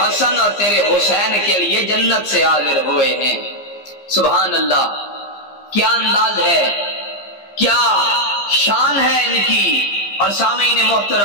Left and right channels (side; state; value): right; late; 15 ms